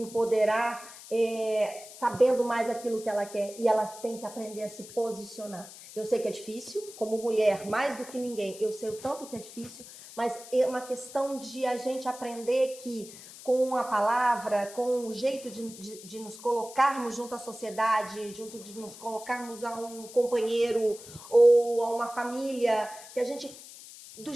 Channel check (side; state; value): left; noise; hiss, 16 dB below the sound